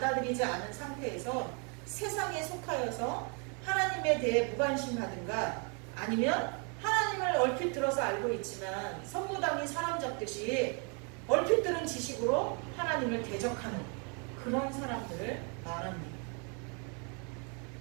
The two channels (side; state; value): left; quieter; 36.5 dB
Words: 않은 상태에서 세상에 속하여서 하나님에 대해 무관심하든가 아니면 하나님을 얼핏 들어서 알고 있지만 선무당이 사람 잡듯이 얼핏 들은 지식으로 하나님을 대적하는 그런 사람들을 말합니다.